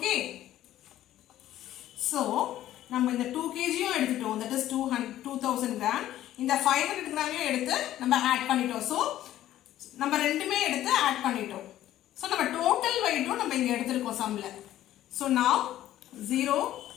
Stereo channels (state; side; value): quieter; right; 13.2 dB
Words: So நம்ம இந்த 2 kg எடுத்துட்டோம், that is 2000 gram. இந்த 500 gram எடுத்து நம்ம ஆட் பண்ணிட்டோம். So நம்ம ரெண்டுமே எடுத்து ஆட் பண்ணிட்டோம். So நம்ம டோட்டல் வெயிட்டும் நம்ம இங்க எடுத்துருக்கோம் சம்ல. So now 0